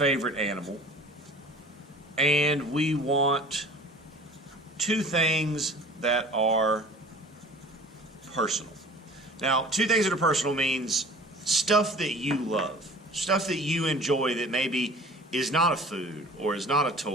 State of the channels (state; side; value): normal; both; correlation 0.44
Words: animal, and we want 2 things that are personal. Now, 2 things that are personal means stuff that you love, stuff that you enjoy that maybe is not a food, or is not a